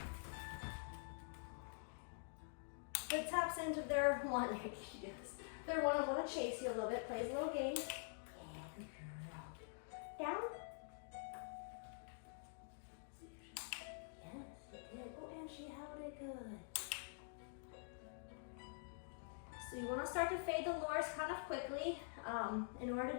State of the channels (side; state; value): right; silent; digital silence